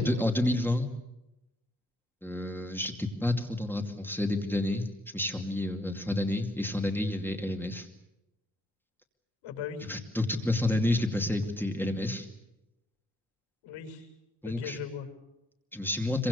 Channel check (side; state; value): both; normal; correlation 0.74